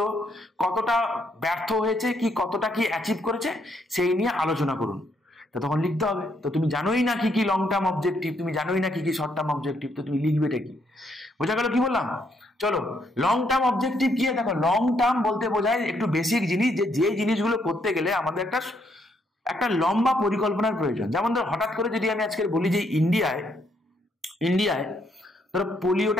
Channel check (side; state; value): both; normal; correlation 0.74